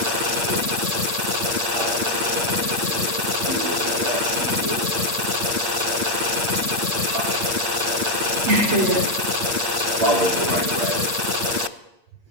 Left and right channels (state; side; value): late; left; 8.6 ms